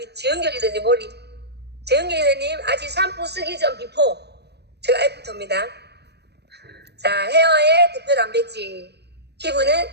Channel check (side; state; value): left; late; 0.48 ms